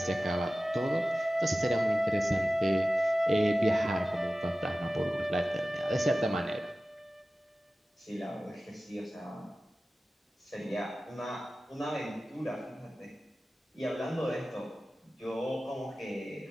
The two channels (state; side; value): normal; both; correlation 0.96